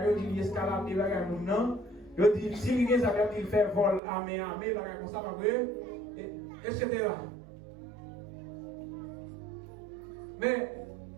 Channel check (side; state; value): left; drops out; at 4.0 s